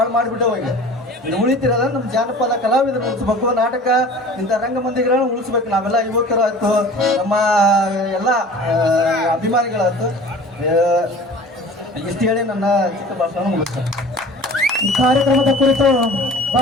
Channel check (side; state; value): both; normal; correlation 0.42